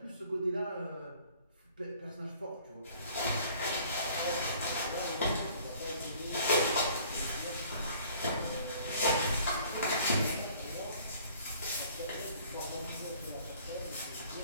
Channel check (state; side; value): inverted; both; correlation -0.54